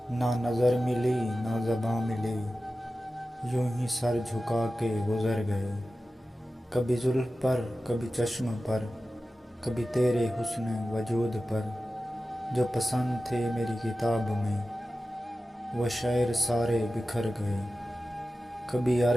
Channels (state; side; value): normal; both; correlation 0.94